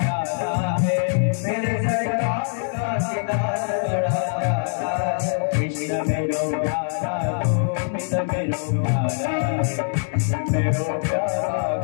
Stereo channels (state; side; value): silent; right; 63 dB below the other